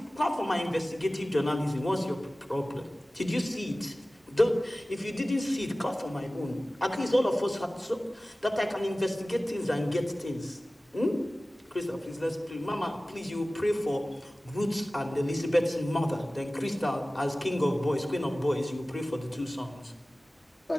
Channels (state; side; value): normal; both; correlation 0.97